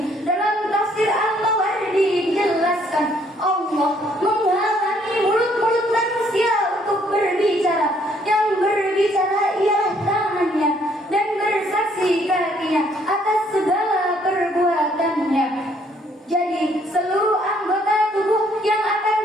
dalam tafsir Al-Mawardi dijelaskan Allah menghalangi mulut-mulut manusia untuk berbicara. Yang berbicara ialah tangannya dan bersaksi kakinya atas segala perbuatannya. Jadi seluruh anggota tubuh yang akan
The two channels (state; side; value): normal; both; correlation 0.65